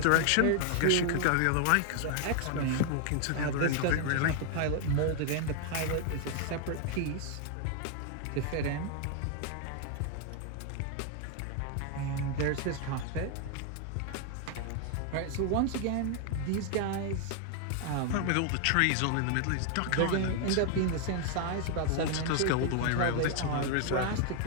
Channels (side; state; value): both; different; correlation 0.00